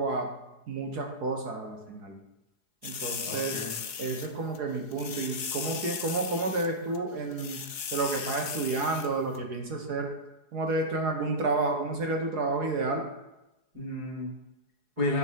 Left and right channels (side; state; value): left; late; 4.8 ms